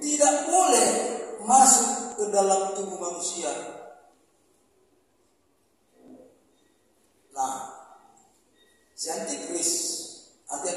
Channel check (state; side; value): identical; both; correlation 1.00